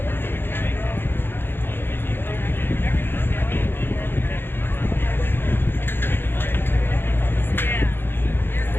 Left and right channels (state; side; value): late; right; 0.10 ms